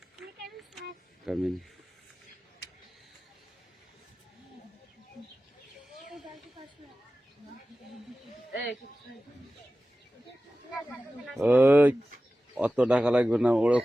Come in. অত টাকা লাগবে না, ওরা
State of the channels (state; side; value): normal; both; correlation 0.95